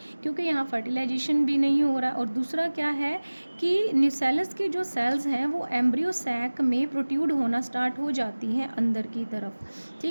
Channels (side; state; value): both; inverted; correlation -1.00